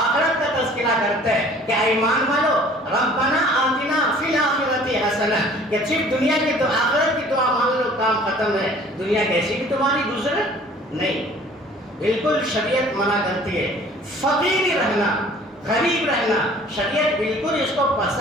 کا تذکرہ کرتے کہ ایمان والو ربنا آتنا فی الآخرۃ حسنہ، کہ صرف دنیا کی تو آخرت کی دعا مان لو کام ختم ہے، دنیا کیسی بھی تمہاری گزرے نہیں۔ بالکل شریعت منع کرتی ہے فقیر رہنا، غریب رہنا، شریعت بالکل اس کو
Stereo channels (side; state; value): both; normal; correlation 0.51